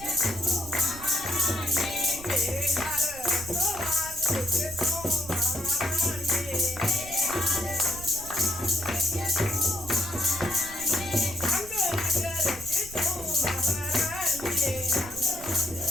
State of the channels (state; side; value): noise; right; rumble, 15 dB below the sound